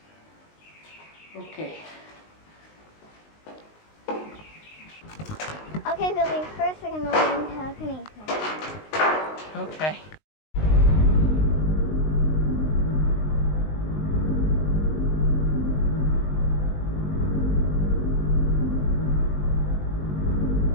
Okay. Okay, Billy, first we're going to learn telekinesis. Okay.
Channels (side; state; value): right; late; 19 ms